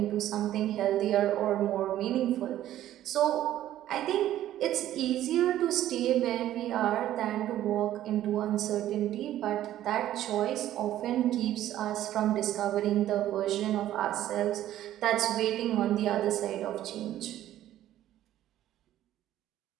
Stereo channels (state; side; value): quieter; left; 12.9 dB